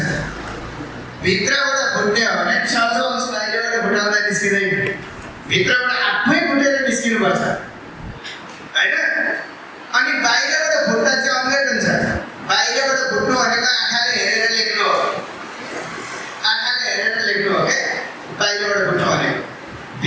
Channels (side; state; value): both; identical; correlation 1.00